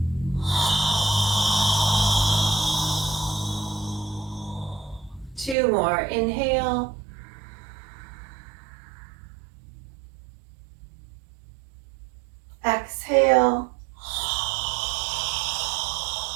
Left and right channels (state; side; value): drops out; left; at 5.6 s